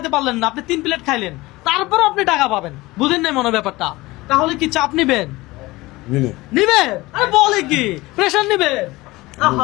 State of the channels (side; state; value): right; quieter; 20.3 dB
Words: পারলেন না, আপনি 3 প্লেট খাইলেন, তারপর আপনি টাকা পাবেন। বুঝেন নাই মনে ব্যাপারটা? তাহলে কি চাপ নিবেন? দিনে। নিবেন? আরে বলে কি, প্রেশার নিবেন?